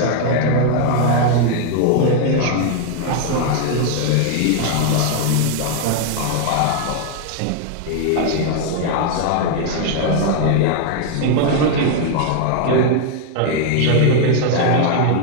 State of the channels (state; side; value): different; both; correlation 0.00